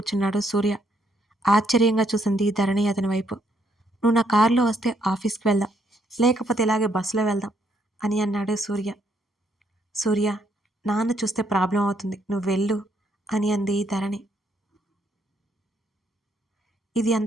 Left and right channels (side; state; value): both; normal; correlation 0.72